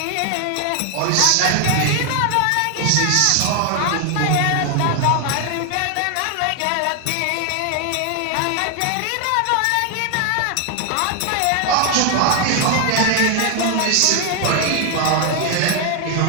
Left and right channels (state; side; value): different; both; correlation 0.01